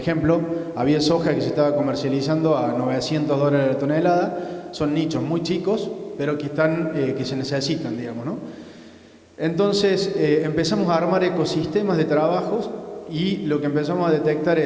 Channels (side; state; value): both; identical; correlation 1.00